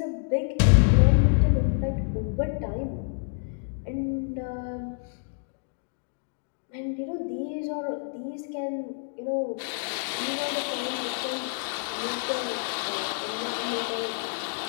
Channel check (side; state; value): right; silent; 60 dB below the other